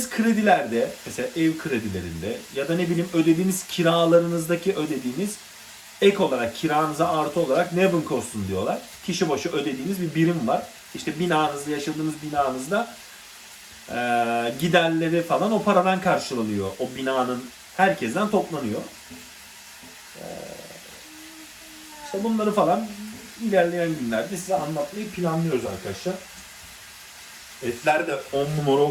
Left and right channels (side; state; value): both; identical; correlation 1.00